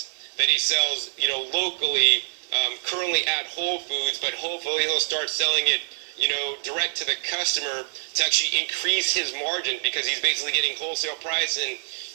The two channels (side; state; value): left; silent; digital silence